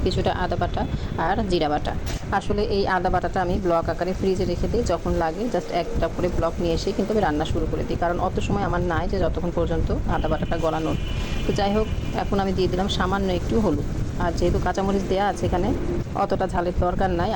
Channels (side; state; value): both; identical; correlation 1.00